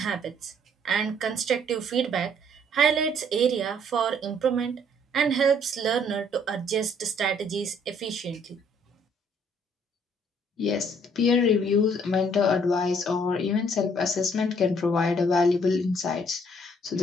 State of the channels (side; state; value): both; normal; correlation 0.63